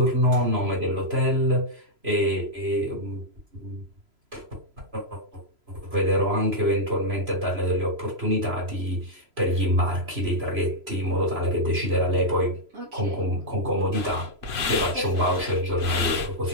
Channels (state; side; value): late; left; 3.0 ms